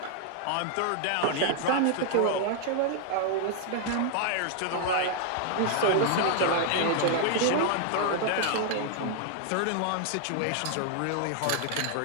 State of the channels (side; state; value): both; different; correlation 0.00